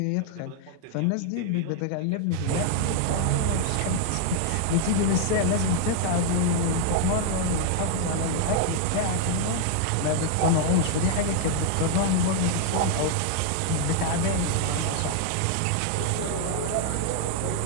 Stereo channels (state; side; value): different; both; correlation 0.00